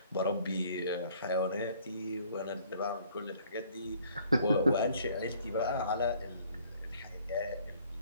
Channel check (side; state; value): both; inverted; correlation -0.59